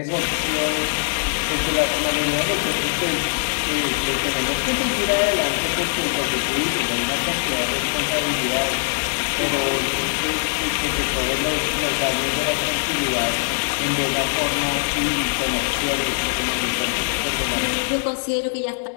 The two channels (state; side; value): silent; right; digital silence